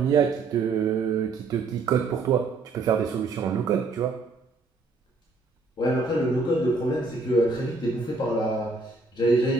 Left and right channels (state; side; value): quieter; left; 3.7 dB